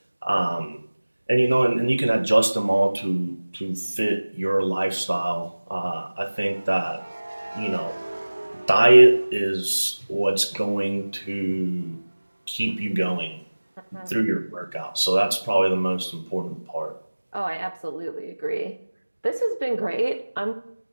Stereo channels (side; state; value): both; inverted; correlation -1.00